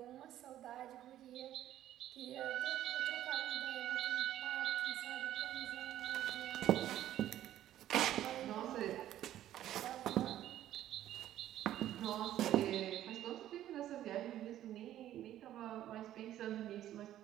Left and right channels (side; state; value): left; quieter; 12.5 dB